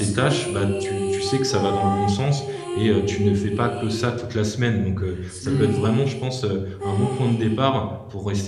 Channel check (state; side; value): identical; both; correlation 1.00